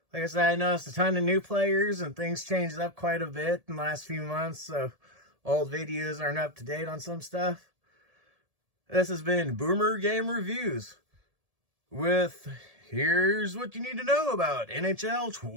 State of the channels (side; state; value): left; late; 1.7 ms